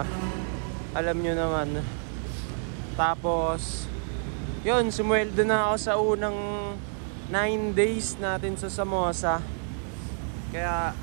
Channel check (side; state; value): left; silent; 59 dB below the other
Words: Alam nyo naman. Tapos yun, sumweldo na ako sa unang 9 days natin sa Samosa. Kaya